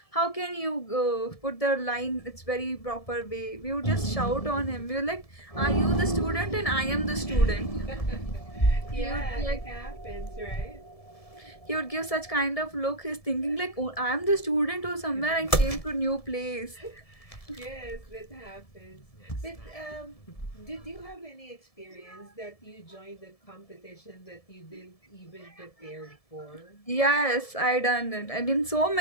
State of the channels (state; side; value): late; right; 1.7 ms